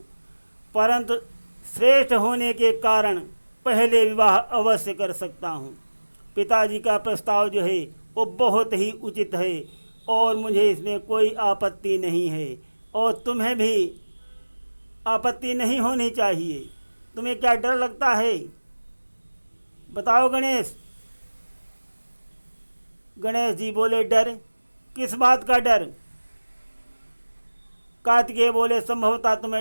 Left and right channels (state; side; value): inverted; both; correlation -1.00